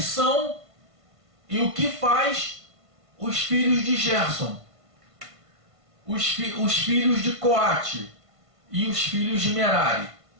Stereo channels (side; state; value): left; late; 1.5 ms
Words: e o que faz os filhos de Gerson, os filhos de Coate e os filhos de Merari?